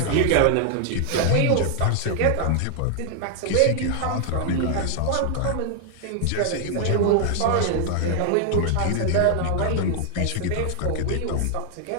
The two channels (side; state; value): both; different; correlation 0.00